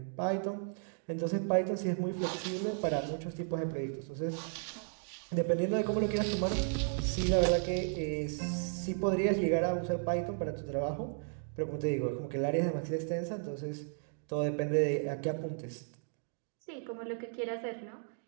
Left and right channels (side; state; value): left; silent; 55 dB below the other